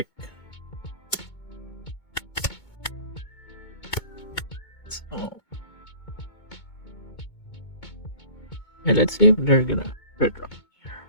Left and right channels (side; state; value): right; late; 2.2 ms